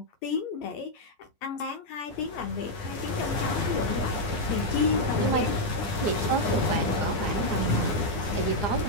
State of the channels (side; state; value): right; late; 9.9 ms